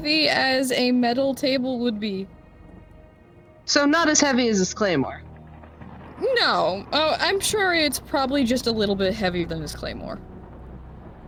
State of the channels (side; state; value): both; identical; correlation 1.00